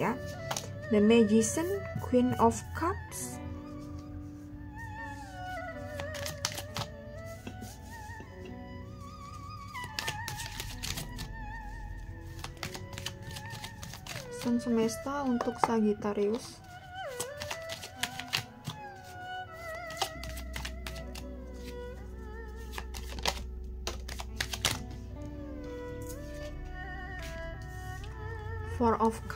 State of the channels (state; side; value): identical; both; correlation 1.00